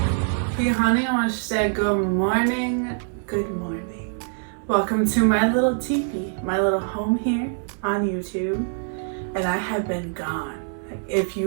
honey, I want to say good morning. Good morning. Welcome to my little teepee, my little home here on YouTube. And I have been gone. If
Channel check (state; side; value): silent; left; digital silence